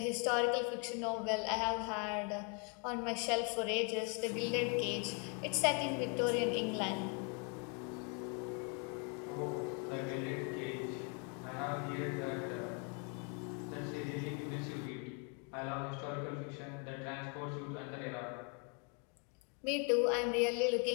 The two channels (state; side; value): quieter; right; 37.1 dB